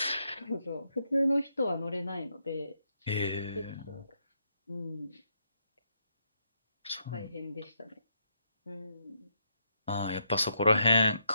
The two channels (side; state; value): both; inverted; correlation -0.79